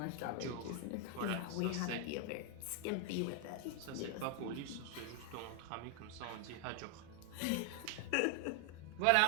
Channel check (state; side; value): different; both; correlation 0.00